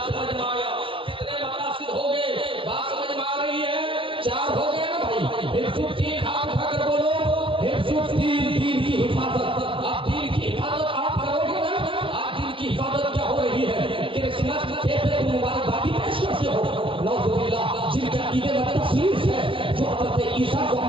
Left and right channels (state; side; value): late; left; 0.25 ms